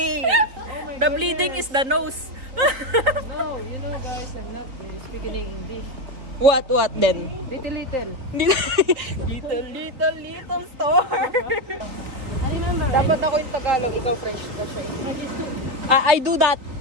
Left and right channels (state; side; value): late; left; 3.7 ms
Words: Oh The bleeding is the nose. No, you know guys, I'm not really speaking English. What then? Little. Little store. I remember. Dapat ako yung Tagalog, ikaw French na siya. I do that.